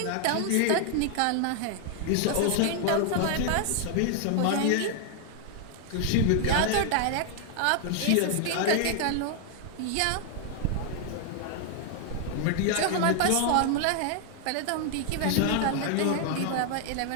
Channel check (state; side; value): different; both; correlation 0.00